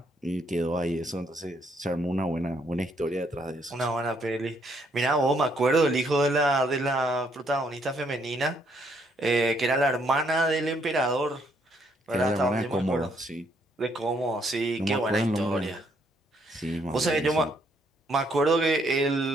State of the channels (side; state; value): both; normal; correlation 0.70